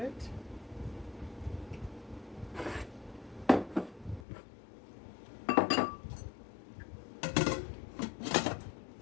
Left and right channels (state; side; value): drops out; right; at 4.2 s